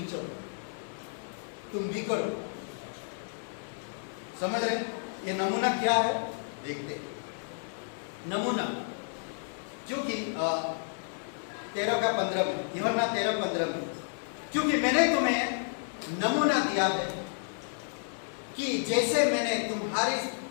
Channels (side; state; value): right; silent; digital silence